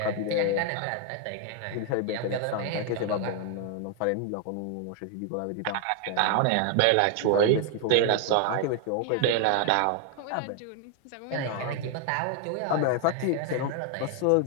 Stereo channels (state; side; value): different; both; correlation 0.00